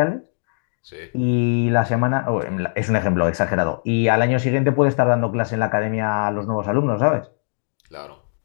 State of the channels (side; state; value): right; silent; digital silence